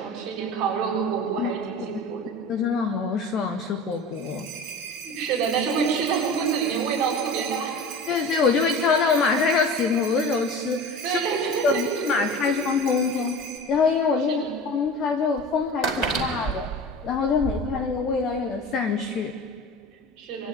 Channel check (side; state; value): both; normal; correlation 0.35